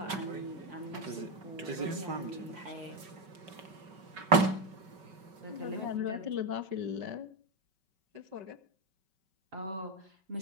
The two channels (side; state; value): left; late; 5.3 ms